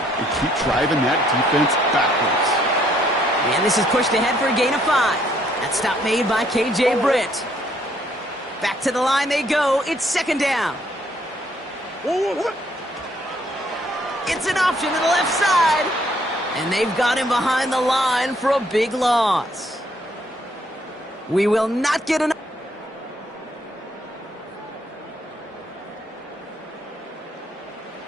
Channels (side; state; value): both; normal; correlation 0.67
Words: keep driving that defense backwards. And this is pushed ahead for a gain of 5. That stop made by K.J. Britt. Back to the line they go. It's 2nd down. It's an option to the left side. And they've got him behind the line for a big loss. We will not get an...